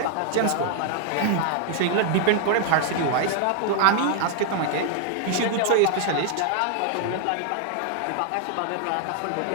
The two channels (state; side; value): different; both; correlation 0.00